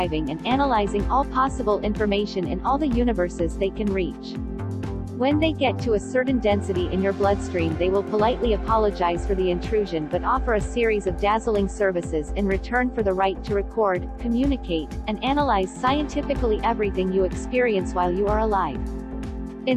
and analyzing all possible information in all the universes they can reach. When they get to a certain density in your bloodstream, they will politely apologize for the intrusion but offer a series of dazzling services in return for the right to record, communicate, and analyze scientifically everything you experience while you are alive.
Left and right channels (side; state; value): both; identical; correlation 1.00